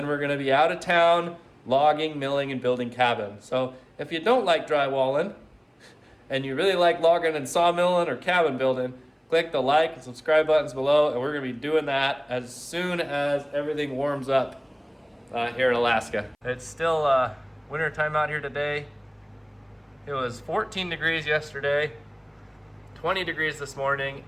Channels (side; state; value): both; identical; correlation 1.00